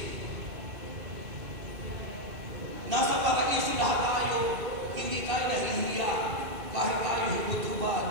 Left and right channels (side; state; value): left; late; 2.7 ms